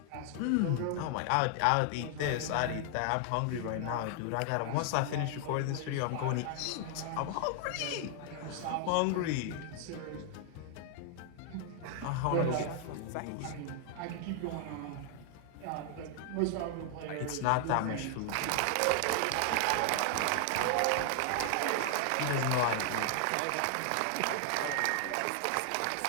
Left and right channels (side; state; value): both; different; correlation 0.00